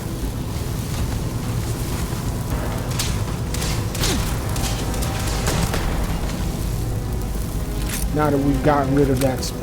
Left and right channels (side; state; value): both; identical; correlation 1.00